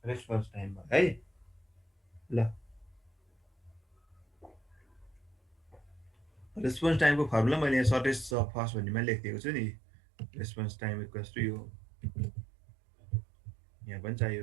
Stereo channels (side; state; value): left; drops out; at 8.3 s